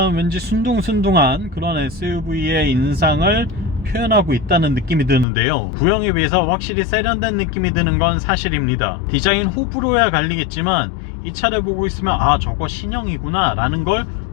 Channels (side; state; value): right; drops out; at 5.2 s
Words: 왠지 순둥순둥한 그런 SUV의 인상을 표현하고 있다는 느낌이 드는데요. 구형에 비해서 확실히 세련된 느낌이 드는 건 사실입니다. 디자인 호불호야 갈리겠지만 이 차를 보고 있으면 아, 저거 신형이구나 라는 걸